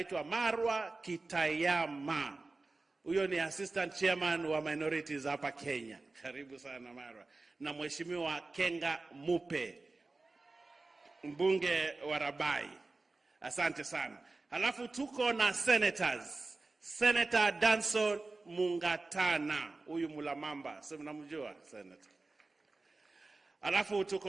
Marwa Kitayama. Huyo ni assistant chairman wa minorities hapa Kenya. Karibu sana Marwa. Na mheshimiwa Kenga Mupe, mbunge wa Rabai. Asante sana. Alafu tuko na senators. Senator Danson Mungatana, huyu Mulamamba, sasa mnamjua senator. Alafu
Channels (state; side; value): quieter; left; 3.4 dB